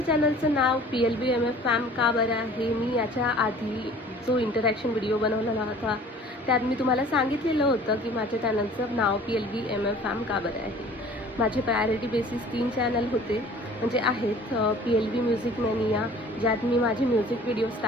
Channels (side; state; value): both; normal; correlation 0.48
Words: चॅनलचं नाव PLBMF फॅम का बरं आहे? मी याच्या आधी जो इंटरॅक्शन व्हिडिओ बनवलेला होता त्यात मी तुम्हाला सांगितलेलं होतं की माझ्या चॅनलचं नाव PLBMF फॅम का बरं आहे. माझे प्रायोरिटी बेसिस 3 चॅनल होते म्हणजे आहेत. PLB म्युझिक मॅनिया, ज्यात मी माझे म्युझिक व्हिडिओज